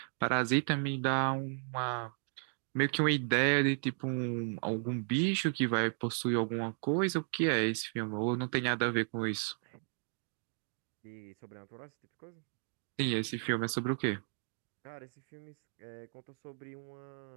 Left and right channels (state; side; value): silent; left; 55 dB below the other